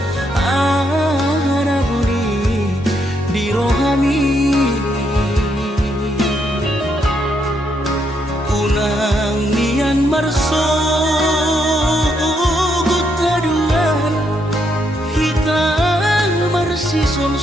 anabuni di rohani unang nian marso gutaduan hitam marsi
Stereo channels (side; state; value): both; normal; correlation 0.76